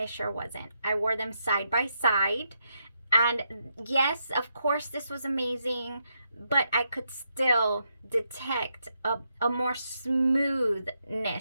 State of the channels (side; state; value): both; inverted; correlation -0.81